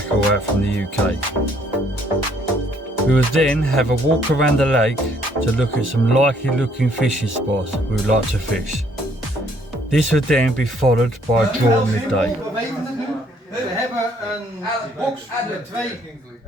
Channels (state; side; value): normal; both; correlation 0.65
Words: out from the UK. We would then have a walk around the lake to look at some likely looking fishing spots we would like to fish. This would then be followed by a draw at midday. We hebben een box met 2